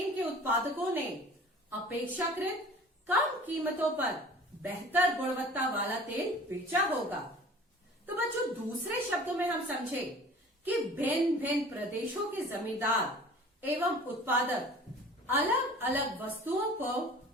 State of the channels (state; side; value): normal; both; correlation 0.45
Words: के उत्पादकों ने अपेक्षाकृत कम कीमतों पर बेहतर गुणवत्ता वाला तेल बेचा होगा। तो बच्चों दूसरे शब्दों में हम समझे कि भिन्न भिन्न प्रदेशों के जमींदार एवं उत्पादक अलग अलग वस्तुओं को